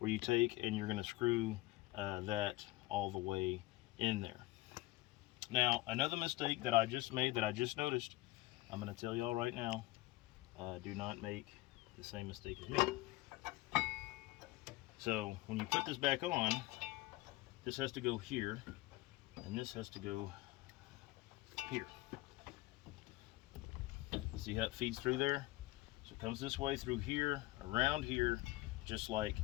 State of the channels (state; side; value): quieter; right; 19.3 dB